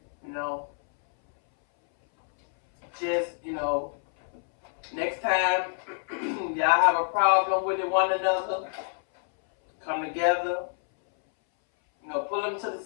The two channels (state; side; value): silent; right; 60 dB below the other